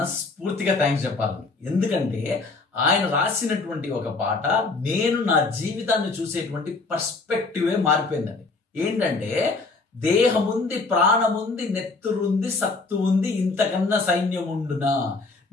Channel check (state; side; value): quieter; right; 3.8 dB